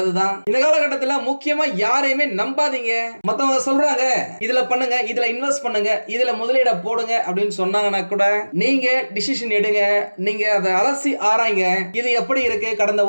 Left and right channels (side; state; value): both; inverted; correlation -1.00